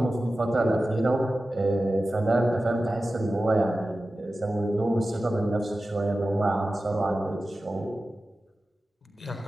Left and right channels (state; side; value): normal; both; correlation 0.94